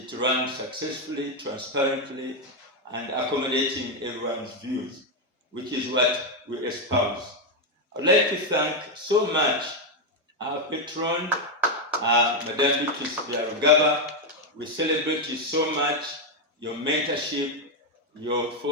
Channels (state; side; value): normal; both; correlation 0.04